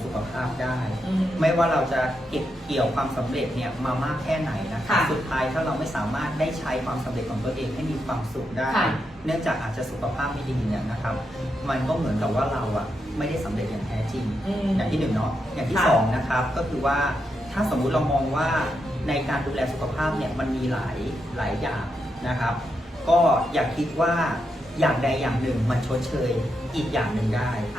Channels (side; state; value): both; normal; correlation 0.84